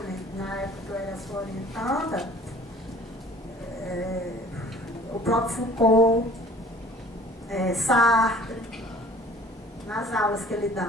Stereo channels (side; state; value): both; normal; correlation 0.50